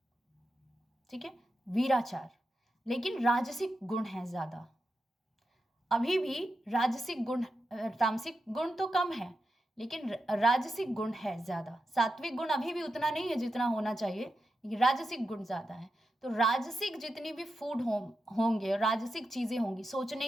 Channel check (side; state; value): both; normal; correlation 0.88